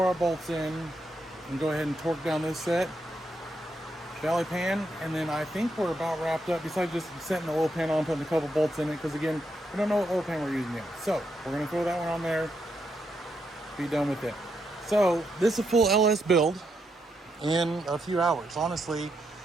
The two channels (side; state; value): both; normal; correlation 0.80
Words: our bolts in, and go ahead and torque down this set, valley pan, and then I think we're about wrapped up, besides just setting the oil pan on, putting a couple bolts in it, because again, we don't know what oil pan we're using yet. So we're gonna throw that one on there, be done with it. So this is a full LS build in a few hours. Honestly,